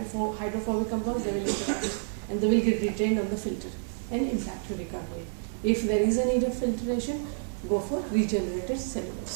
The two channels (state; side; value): silent; left; digital silence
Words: compounds, they will interact and they will get retained on the filter and impact your recovery. If there is a need of filtration, go for regenerated